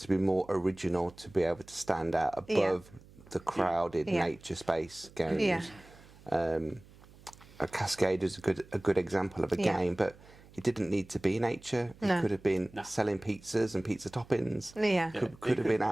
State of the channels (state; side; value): noise; right; hum, 23 dB below the sound